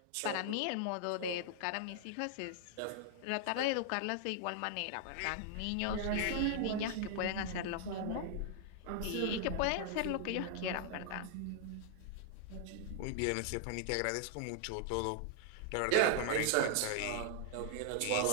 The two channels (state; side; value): different; both; correlation -0.01